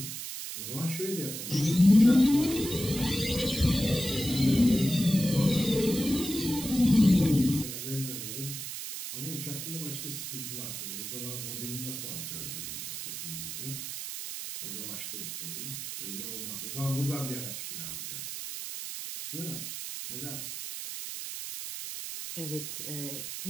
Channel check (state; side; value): noise; right; hiss, 7 dB below the sound